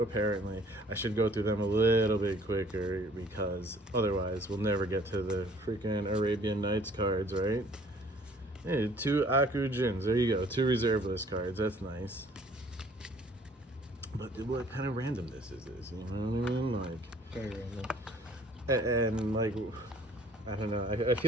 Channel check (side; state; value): both; normal; correlation 0.56